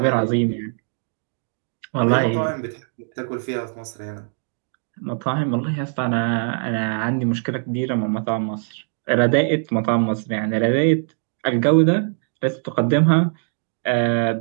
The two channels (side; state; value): left; silent; digital silence